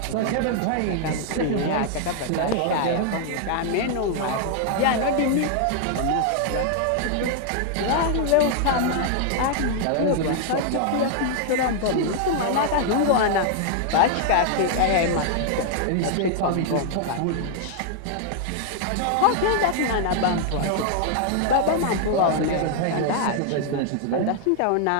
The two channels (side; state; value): both; different; correlation 0.00